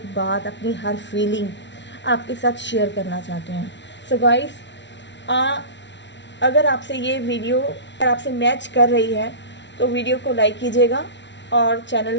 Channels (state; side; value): late; right; 0.52 ms